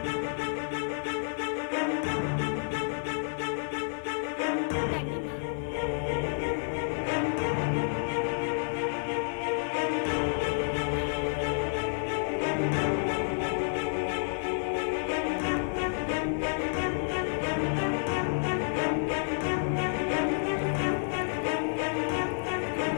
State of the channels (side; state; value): right; silent; 58 dB below the other